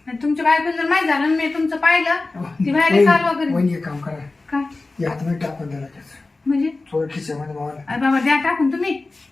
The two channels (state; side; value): quieter; right; 3.4 dB